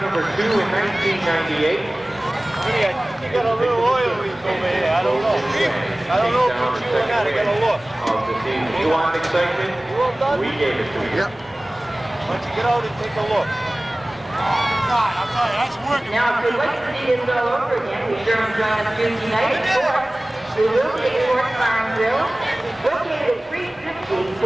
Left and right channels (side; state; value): both; normal; correlation 0.98